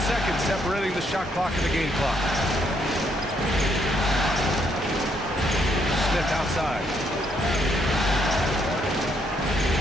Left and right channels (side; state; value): both; normal; correlation 0.72